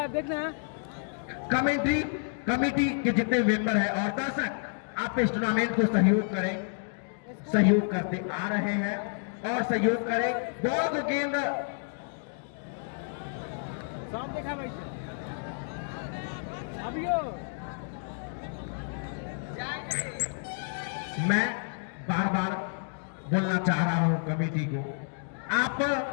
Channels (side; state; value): right; silent; 58 dB below the other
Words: कमेंट्री कमेटी के जितने मेंबर हैं और दर्शक आप इस टूर्नामेंट को सहयोग करें, सहयोग करते आ रहे हैं और सहयोग करें। बॉल को गेंद देखा भाई मैं बार बार बोलना चाह रहा हूं कमेटी को, आप